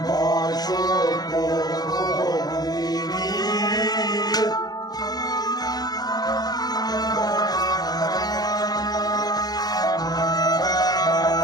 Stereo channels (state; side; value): late; right; 0.19 ms